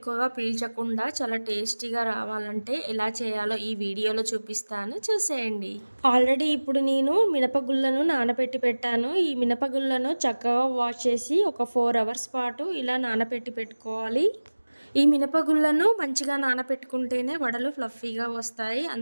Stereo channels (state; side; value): inverted; both; correlation -1.00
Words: పీల్చకుండా చాలా టేస్టీగా రావాలంటే ఎలా చేయాలో ఈ వీడియోలో చూపిస్తాను, చూసేయండి. ఆల్రెడీ ఇప్పుడు నేను మినపగుళ్ళను నానబెట్టి పెట్టాను. ఈ మినపగుళ్ళను చక్కగా వాష్ చేసి ఒక 4 అవర్స్ పాటు ఇలా నానబెట్టి పెట్టుకోవాలి. ఈ మినపగుళ్ళను మంచిగా నానబెట్టుకుంటేనే వడలు ఫ్లఫీగా వస్తాయి.